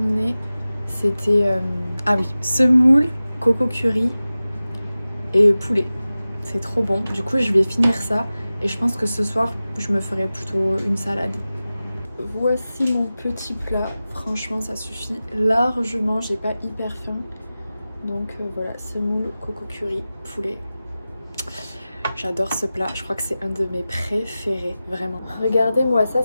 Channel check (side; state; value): both; inverted; correlation -0.96